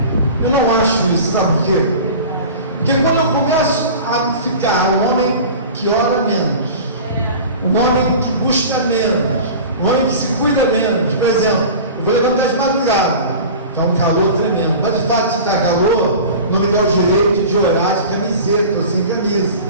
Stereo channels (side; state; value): both; inverted; correlation -0.37